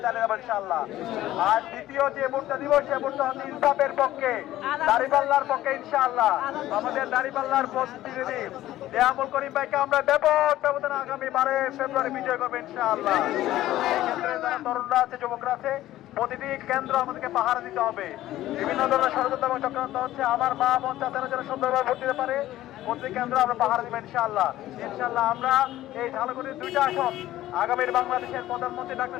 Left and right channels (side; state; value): right; quieter; 14.6 dB